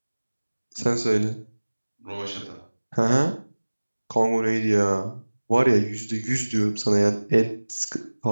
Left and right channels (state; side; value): inverted; both; correlation -1.00